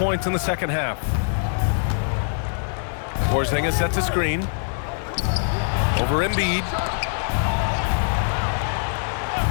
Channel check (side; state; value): right; silent; 63 dB below the other